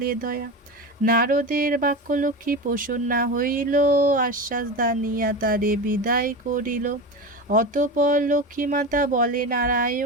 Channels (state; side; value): normal; both; correlation 0.24